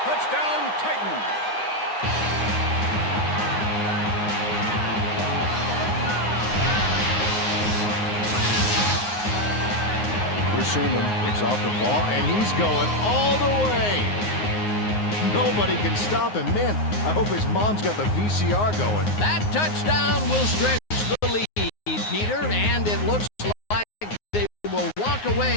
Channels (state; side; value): late; right; 9.6 ms